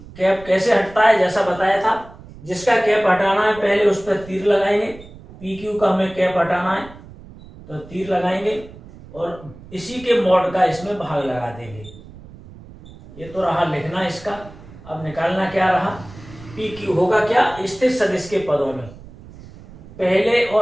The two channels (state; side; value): noise; right; rumble, 19 dB below the sound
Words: कैसे हटता है? जैसा बताया था, जिसका कैप हटाना है पहले उस पर तीर लगाएंगे। पी क्यू का हमें कैप हटाना है तो तीर लगाएंगे और इसी के मॉड का इसमें भाग लगा देंगे। ये तो रहा लिखना इसका। अब निकालना क्या रहा? पी क्यू होगा क्या? स्थित सदिश के पदों में पहले